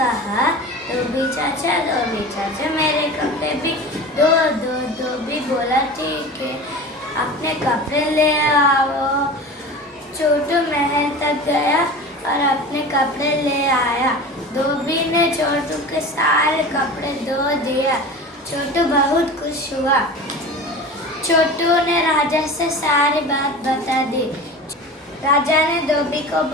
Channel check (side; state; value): both; normal; correlation 0.34